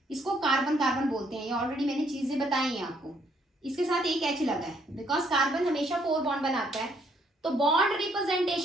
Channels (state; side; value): normal; both; correlation 0.69